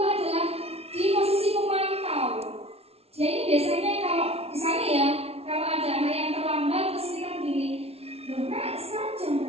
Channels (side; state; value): left; late; 0.30 ms